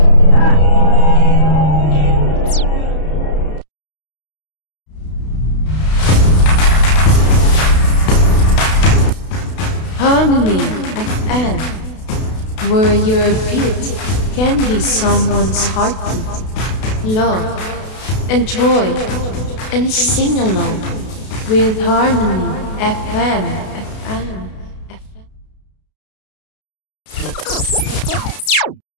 Harmony FM, where your beat can be someone's heartbeat. Love, enjoy, and sing along with Harmony FM.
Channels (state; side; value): late; right; 32 ms